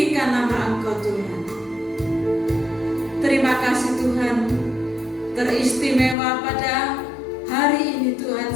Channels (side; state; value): right; drops out; at 6.2 s